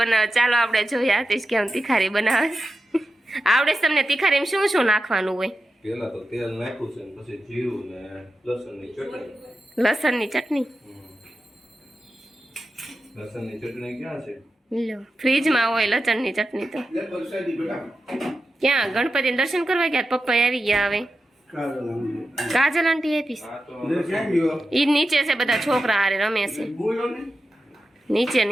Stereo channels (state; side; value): normal; both; correlation 0.91